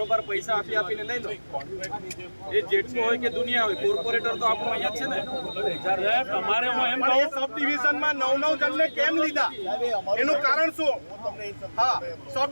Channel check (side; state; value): both; inverted; correlation -1.00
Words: પૈસા આપીને લઈ લો. એ જેટલું હોય કે દુનિયા હોય, કોર્પોરેટર તો આપણું અહીંયા જ છે ને. તમારે હું એમ પણ એ સબ ડિવિઝનમાં 9 જણને કેમ લીધા એનું કારણ શું? હા, સબ